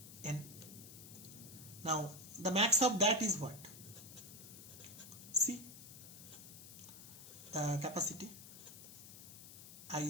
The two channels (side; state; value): left; noise; hiss, 14 dB below the sound